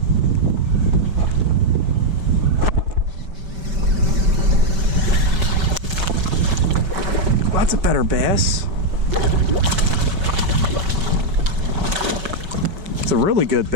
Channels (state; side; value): late; left; 5.2 ms